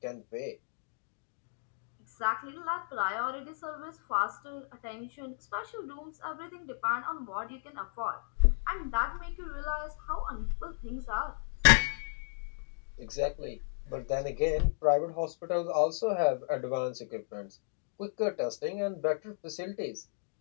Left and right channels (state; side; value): silent; right; digital silence